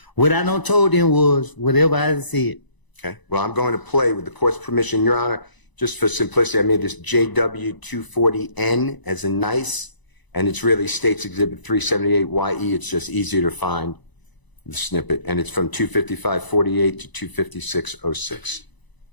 what I done told them was whatever I said. Okay. Well, I'm going to play with the court's permission, Your Honor. Just for simplicity, I made this JW240N as a nice, and it's really State's Exhibit 378YE. It's just easier to find the snippet, and it's from 255:48 to 256:06.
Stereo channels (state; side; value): late; right; 1.0 ms